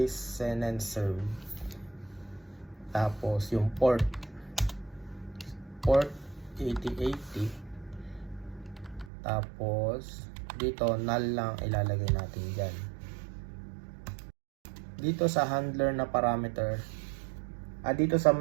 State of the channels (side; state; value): left; drops out; at 9.1 s